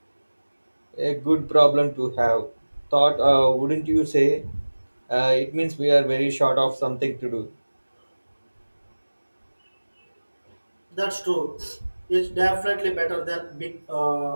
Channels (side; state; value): both; inverted; correlation -1.00